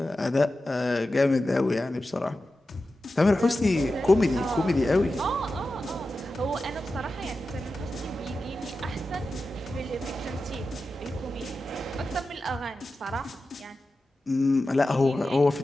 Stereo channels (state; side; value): normal; both; correlation 0.92